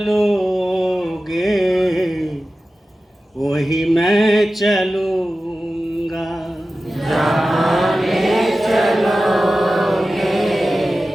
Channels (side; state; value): both; normal; correlation 0.94